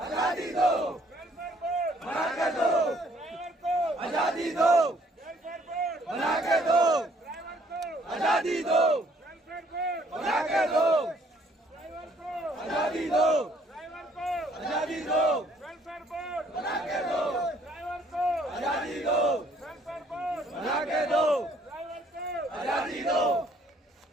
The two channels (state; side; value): normal; both; correlation 0.63